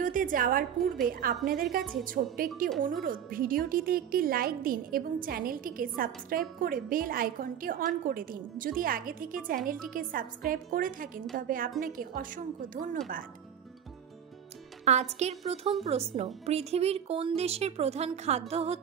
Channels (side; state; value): left; quieter; 8.9 dB